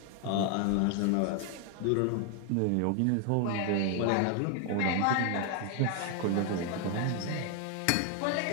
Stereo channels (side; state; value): both; different; correlation 0.00